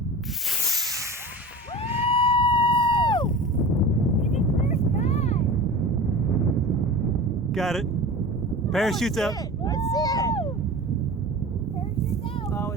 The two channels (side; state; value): both; normal; correlation 0.34